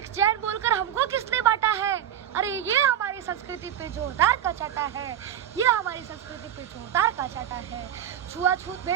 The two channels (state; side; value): quieter; left; 10.2 dB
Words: बोलकर हमको किसने बांटा है? अरे ये हमारी संस्कृति पे जोरदार का चाटा है। छुआछूत